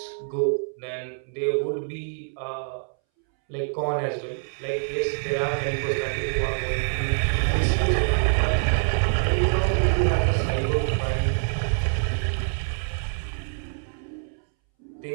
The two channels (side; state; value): left; silent; 61 dB below the other